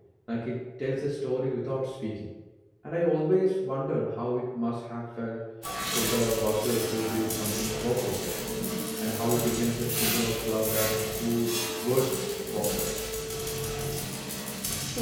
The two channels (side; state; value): both; identical; correlation 1.00